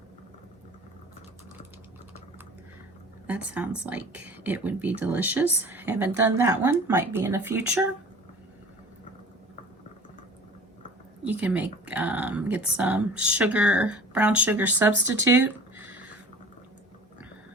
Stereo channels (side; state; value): both; normal; correlation 0.43